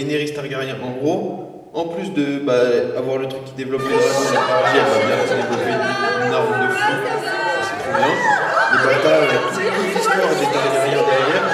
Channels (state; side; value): identical; both; correlation 1.00